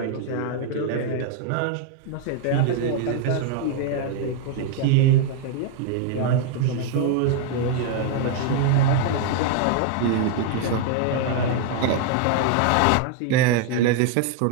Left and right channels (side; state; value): both; different; correlation 0.00